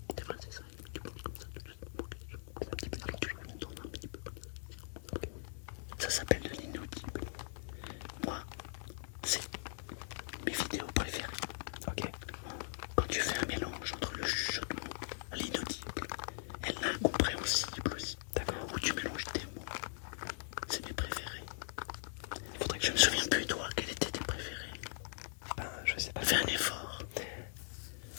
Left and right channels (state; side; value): silent; right; digital silence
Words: c'est vrai, c'est ça. Tu parles comme ça tout de suite pour que les gens comprennent un petit peu. Alors tu me tournes un petit peu comme ça. Ça s'appelle de l'inaudible. Moi, c'est mes vidéos préférées. Ok. Quand tu fais un mélange entre le chuchotement, l'inaudible et l'incompréhensible aussi, D'accord. où tu mélanges tes mots, c'est mes préférés. Il faudrait que Je me souviens plus, toi, quels étaient tes préférés. Ben, je sais pas. Fais un effort.